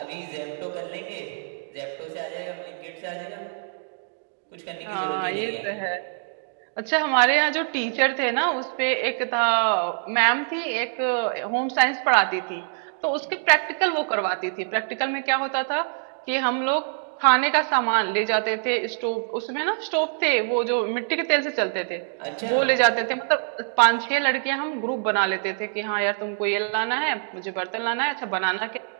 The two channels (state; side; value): silent; left; digital silence